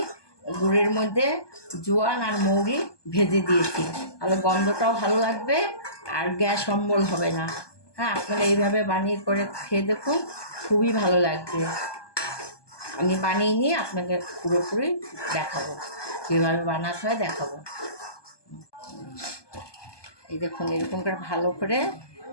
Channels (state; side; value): late; right; 1.2 ms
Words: গুড়ের মধ্যে জোয়ান আর মৌরি ভেজে দিয়েছি, তাহলে গন্ধটাও ভালো লাগবে আর গ্যাস অম্বল হবে না। হ্যাঁ, আপনারা এইভাবে বানিয়ে করে খেয়ে দেখুন, খুবই ভালো লাগবে। আমি বানিয়ে নিয়ে আপনাকে পুরোপুরি দেখাবো, কীভাবে বানাতে হয় দেখাবো। এই দেখুন, এরকম করে ভালো করে